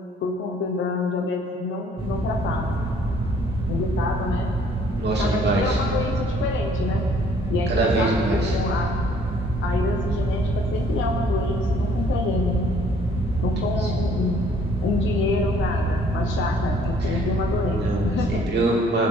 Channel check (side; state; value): both; normal; correlation 0.60